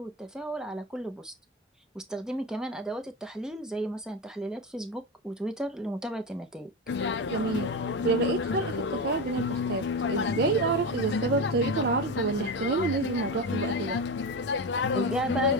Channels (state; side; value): normal; both; correlation 0.19